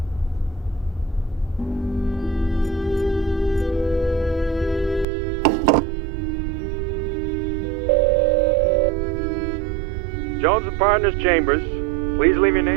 Jones and Partners Chambers. Please leave your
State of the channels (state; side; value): drops out; left; at 5.1 s